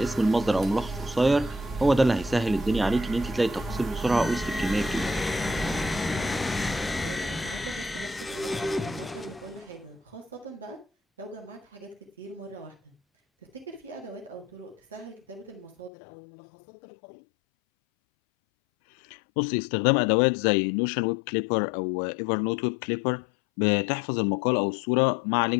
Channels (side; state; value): right; drops out; at 15.9 s